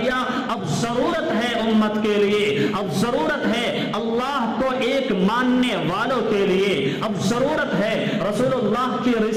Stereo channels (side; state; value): both; identical; correlation 1.00